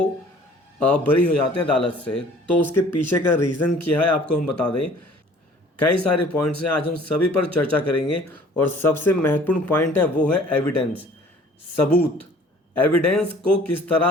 बरी हो जाते हैं अदालत से। तो उसके पीछे का रीज़न क्या है आपको हम बता दें। कई सारे पॉइंट्स हैं, आज हम सभी पर चर्चा करेंगे। और सबसे महत्वपूर्ण पॉइंट है वो है एविडेंस, सबूत। एविडेंस को किस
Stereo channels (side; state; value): both; normal; correlation 0.52